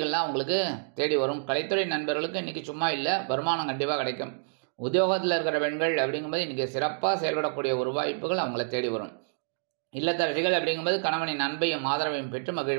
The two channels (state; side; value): silent; left; digital silence